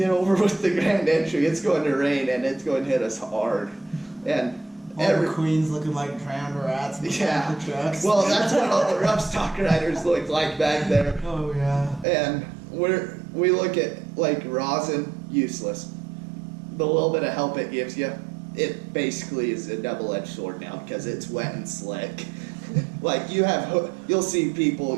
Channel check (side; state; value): left; drops out; at 12.1 s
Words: over with the grand entry. It's going to rain and it's going to hit us hard. And All the queens looking like drowned rats in the back of the trucks. well, that's what all the rough stock riders look like back there. Oh yeah. And we look at like rosin, useless. The little bit of help it gives you, it basically is a double-edged sword now because it's wet and slick. Like you'll see people